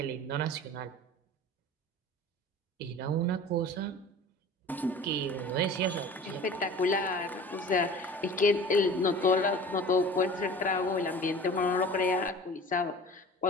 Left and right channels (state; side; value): normal; both; correlation 0.41